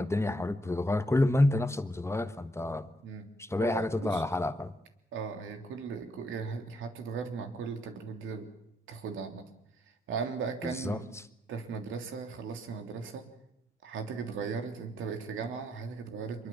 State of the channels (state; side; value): normal; both; correlation 0.76